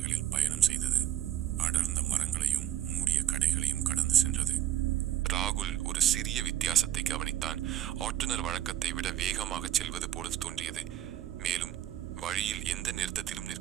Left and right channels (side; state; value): left; quieter; 11.6 dB